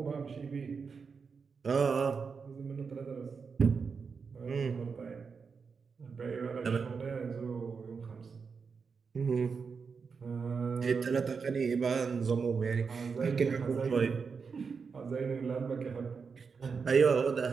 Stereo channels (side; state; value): left; quieter; 5.4 dB